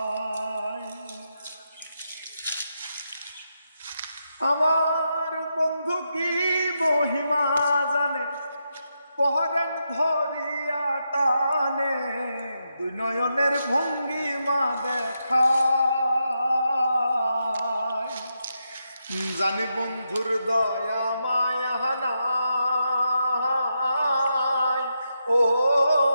আমার বন্ধু কি মহিমা জানে, পহরান ধরিয়া টানে, দুই নয়নের ভঙ্গিমা দেখায়। জানি বন্ধুর দয়া মায়া নাই, ও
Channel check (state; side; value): inverted; both; correlation -0.84